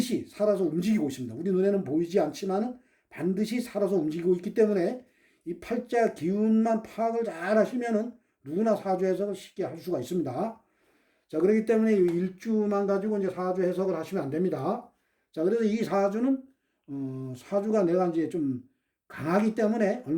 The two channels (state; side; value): identical; both; correlation 1.00